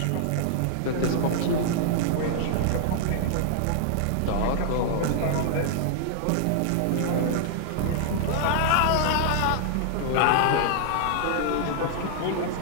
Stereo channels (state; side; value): different; both; correlation -0.01